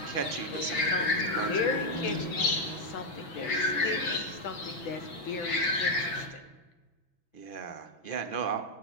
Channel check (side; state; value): right; late; 6.1 ms